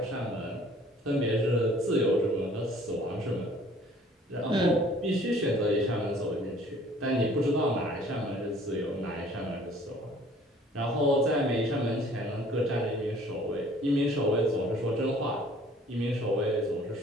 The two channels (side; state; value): both; normal; correlation 0.54